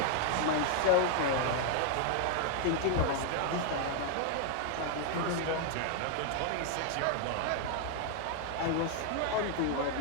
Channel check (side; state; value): both; different; correlation 0.00